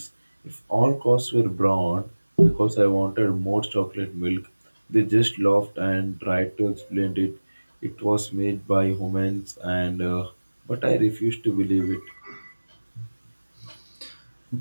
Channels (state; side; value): inverted; both; correlation -1.00